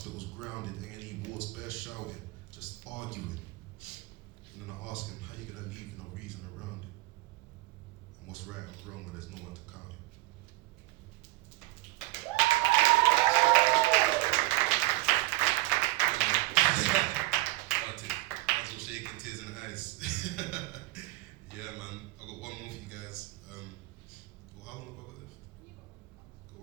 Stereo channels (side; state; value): left; quieter; 19.8 dB